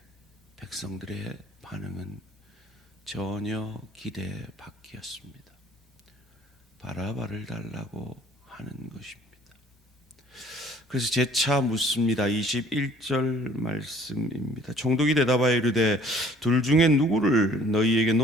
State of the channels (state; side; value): normal; both; correlation 0.56